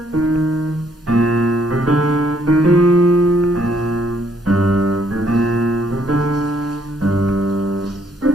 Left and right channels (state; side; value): normal; both; correlation 0.68